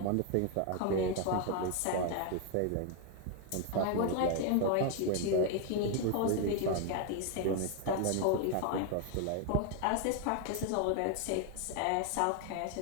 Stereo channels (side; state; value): both; different; correlation 0.00